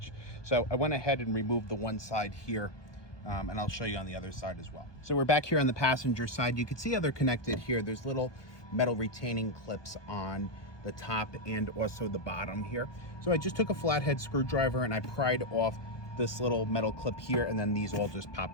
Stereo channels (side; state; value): right; late; 1.3 ms